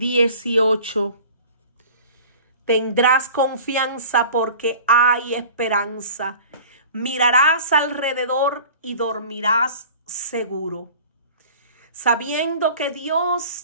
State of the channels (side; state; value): both; inverted; correlation -0.43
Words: tendrás confianza porque hay esperanza. Mirarás alrededor y dormirás seguro, sabiendo que